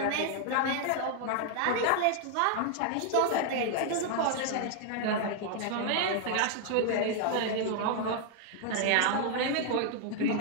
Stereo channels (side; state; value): both; different; correlation 0.00